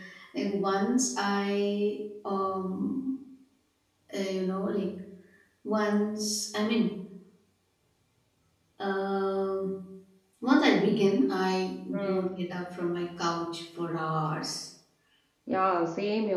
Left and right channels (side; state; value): both; identical; correlation 1.00